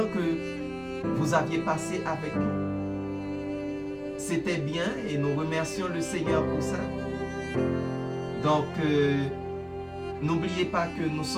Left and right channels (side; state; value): both; identical; correlation 1.00